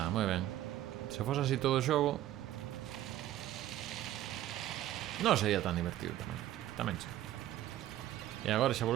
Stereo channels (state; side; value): quieter; left; 13.5 dB